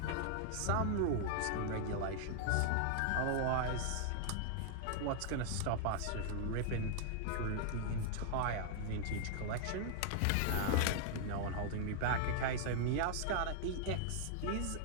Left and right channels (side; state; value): both; different; correlation -0.01